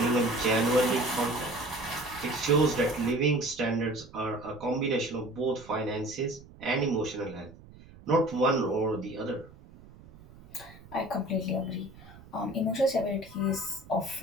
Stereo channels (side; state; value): right; noise; rumble, 21 dB below the sound